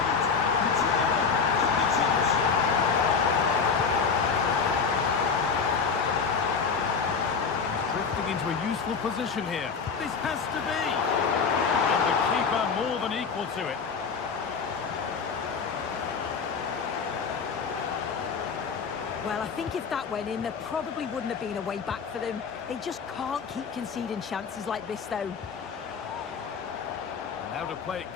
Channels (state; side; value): quieter; right; 5.6 dB